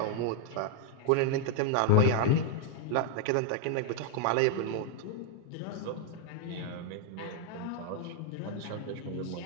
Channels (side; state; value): both; different; correlation 0.00